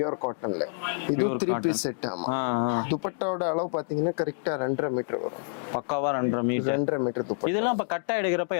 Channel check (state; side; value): silent; right; digital silence